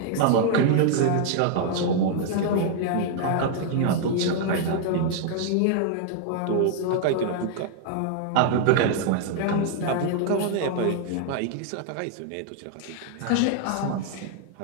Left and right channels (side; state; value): both; different; correlation 0.00